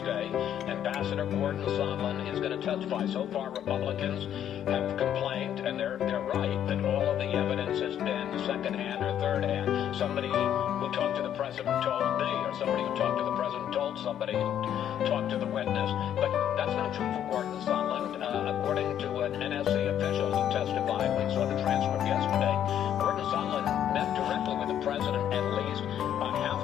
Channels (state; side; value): quieter; right; 10.2 dB